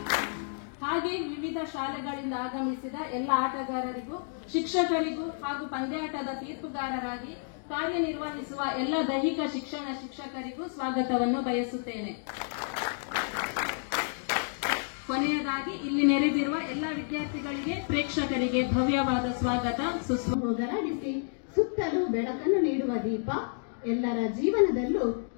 ಹಾಗೆ ವಿವಿಧ ಶಾಲೆಗಳಿಂದ ಆಗಮಿಸಿದ ಎಲ್ಲ ಆಟಗಾರರಿಗೂ ಶಿಕ್ಷಕರಿಗೂ ಹಾಗೂ ಪಂದ್ಯಾಟದ ತೀರ್ಪುಗಾರರಾಗಿ ಕಾರ್ಯನಿರ್ವಹಿಸುವ ಎಲ್ಲ ದೈಹಿಕ ಶಿಕ್ಷಣ ಶಿಕ್ಷಕರಿಗೂ ಸ್ವಾಗತವನ್ನು ಬಯಸುತ್ತೇನೆ. ಕೊನೆಯದಾಗಿ ಇಲ್ಲಿ ನೆರೆದಿರುವ ಎಲ್ಲ ವಿದ್ಯಾರ್ಥಿಗಳಿಗೆ ಪ್ರೇಕ್ಷಕರಿಗೆ ಭವ್ಯವಾದ ಸ್ವಾಗತ ಹೋಗಲಾಡಿಸಿ ಸುತ್ತಲೂ ಬೆಳಕನ್ನು ನೀಡುವ ದೀಪ ಎಲ್ಲರ ಜೀವನದಲ್ಲೂ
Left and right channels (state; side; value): silent; right; digital silence